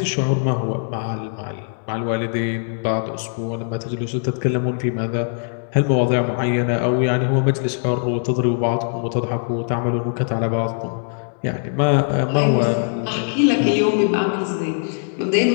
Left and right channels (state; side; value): silent; right; digital silence